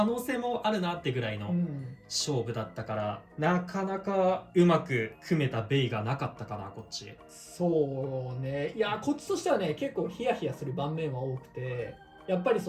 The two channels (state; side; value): identical; both; correlation 1.00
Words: 能性もあるなってぐらいの勝負だったから、なかなかうまく組めたベイがなかったかなこっち。そうね。いやこっちとしてはね結構ヒヤヒヤする盤面は多くて、やっぱり